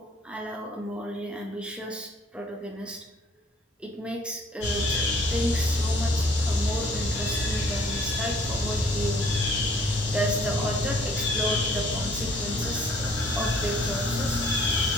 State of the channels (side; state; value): both; normal; correlation 0.59